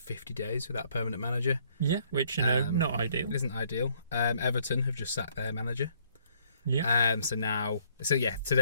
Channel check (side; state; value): both; inverted; correlation -0.65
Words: days without a permanent manager. Yeah, which, not ideal. It isn't ideal. Everton have just sacked their manager. Yeah. So